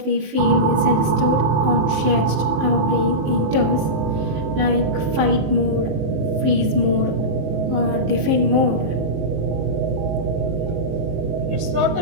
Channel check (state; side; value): late; left; 19 ms